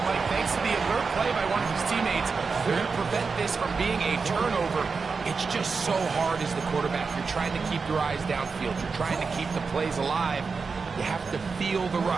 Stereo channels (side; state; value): left; quieter; 4.8 dB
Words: Mike, thanks to the alert play by one of his teammates, they're going to prevent this from being a turnover. It's just so hard as the quarterback. You're trying to keep your eyes downfield. You're trying to keep the plays alive. You have to feel the